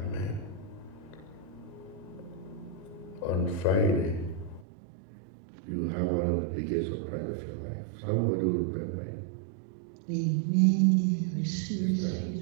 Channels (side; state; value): left; drops out; at 4.7 s